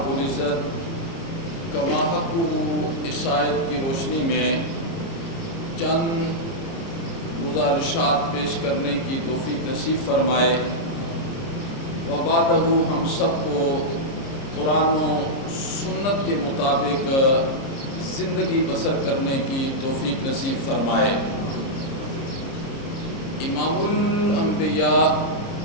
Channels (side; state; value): right; late; 30 ms